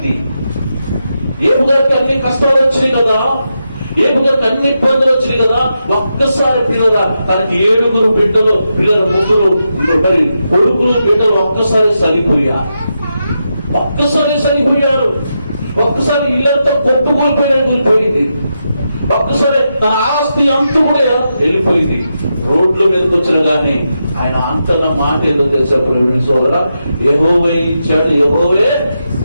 ఏబు గారికి అన్ని కష్టాలు వచ్చినాయి కదా, ఏబు గారికి అన్ని ఇబ్బందులు వచ్చినాయి కదా. ఒక్కసారి పిల్లల తనకి 7 బిడ్డలు, పిల్లల 3 మరి కొడుకులు బిడ్డలు ఒక్కసారి చనిపోయారు. ఒక్కసారి ఇల్లంతా కూలిపోయింది. ఒక్కసారి తన ఆస్తి అంతా కూడా వెళ్ళిపోయింది. రోడ్ల మీదకి వచ్చిన కానీ ఆయన అంతన్న మాట ఏదో తెలుసా సోదరా, యెహోవా ఇచ్చాడు, యెహోవే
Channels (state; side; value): inverted; both; correlation -0.86